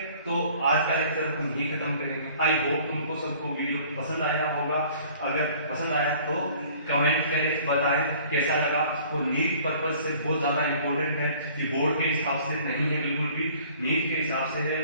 तो आज का लेक्चर हम यहीं खत्म करेंगे। आई होप तुमको सबको वीडियो पसंद आया होगा। अगर पसंद आया तो कमेंट करें, बताएं कैसा लगा। और नीट पर्पज से बहुत ज्यादा इंपॉर्टेंट है कि बोर्ड के हिसाब से नहीं है, बिल्कुल भी नीट के हिसाब से है,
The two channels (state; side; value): inverted; both; correlation -0.52